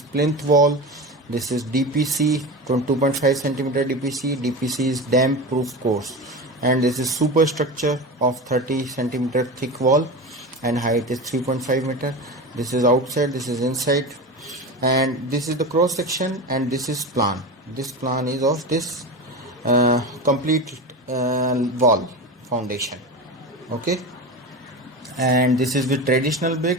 plinth wall, this is DPC, 2.5 centimeter DPC is damp proof course, and this is superstructure of 30 centimeter thick wall and height is 3.5 meter. This is outside, this is inside, and this is the cross section, and this is plan. This plan is of this complete wall foundation. Okay, and this is with traditional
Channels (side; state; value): both; normal; correlation 0.25